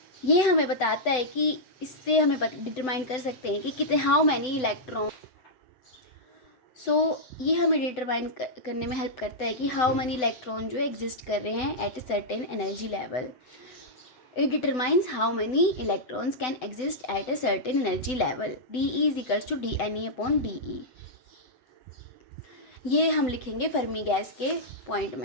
ये हमें बताता है कि इससे हमें डिटरमाइन कर सकते हैं कि कितने हाउ मैनी इलेक्ट्रॉन। ये हमें डिटरमाइन करने में हेल्प करता है कि हाउ मैनी इलेक्ट्रॉन जो एग्जिस्ट कर रहे हैं at a certain energy level. It determines how many electrons can exist at a certain energy level. DE is equals to DNE upon DE। ये हम लिखेंगे फर्मी गैस के पॉइंट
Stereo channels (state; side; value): late; right; 7.9 ms